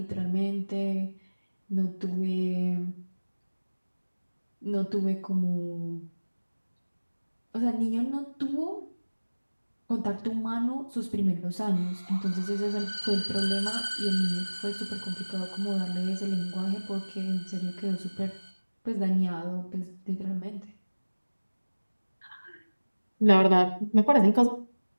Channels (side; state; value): both; inverted; correlation -1.00